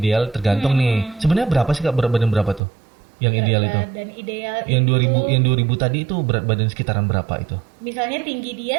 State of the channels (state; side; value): drops out; left; at 2.6 s